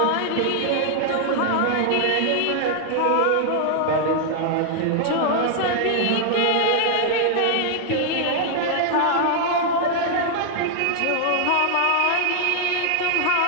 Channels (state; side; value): different; both; correlation 0.00